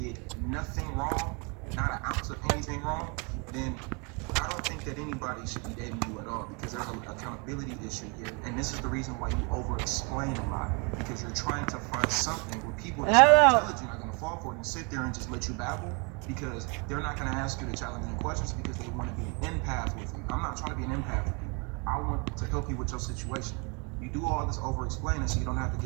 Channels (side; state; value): left; quieter; 32.8 dB